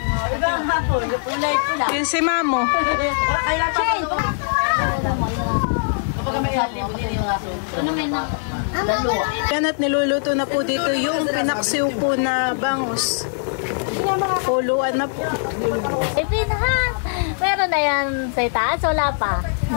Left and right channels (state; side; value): silent; right; digital silence